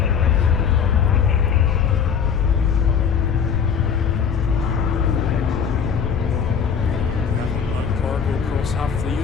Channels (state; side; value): quieter; right; 7.0 dB